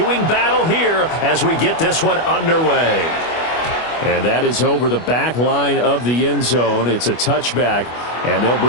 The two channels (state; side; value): late; right; 25 ms